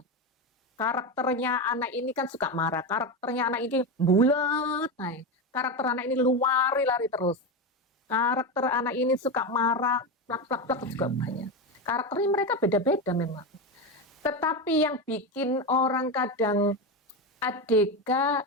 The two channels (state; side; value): normal; both; correlation 0.15